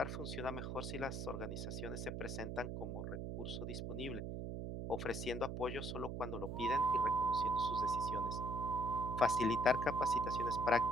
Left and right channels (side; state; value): right; noise; hum, 4 dB below the sound